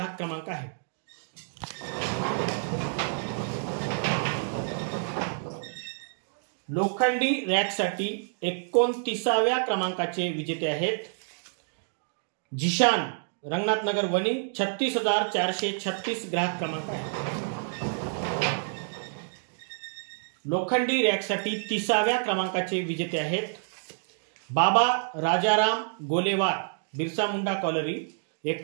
क्रमांक आहे। लोखंडी रॅकसाठी 29व्या क्रमांकाचे विजेते आहेत जिशान, रंगनाथनगर वणी, 36,436 ग्राहक क्रमांक आहे। लोखंडी रॅकसाठी 30व्या क्रमांकाचे विजेते आहेत बाबा राजाराम गोलेवार, बिरसा मुंडा कॉलरी,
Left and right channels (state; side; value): silent; left; digital silence